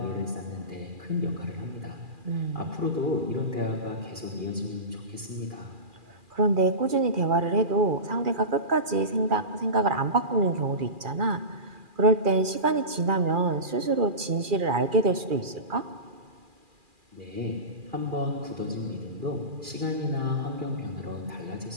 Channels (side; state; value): left; late; 2.4 ms